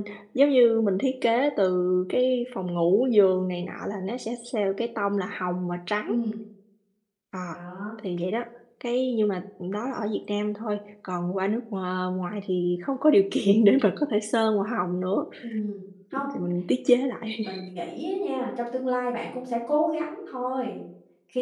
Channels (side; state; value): both; identical; correlation 1.00